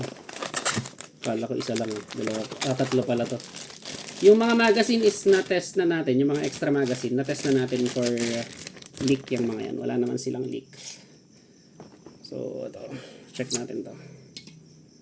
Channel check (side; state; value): both; identical; correlation 1.00